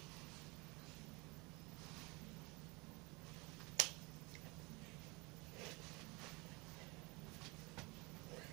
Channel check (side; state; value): left; quieter; 26.8 dB